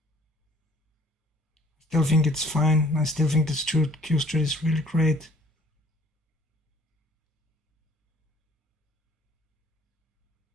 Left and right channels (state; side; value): normal; both; correlation 0.56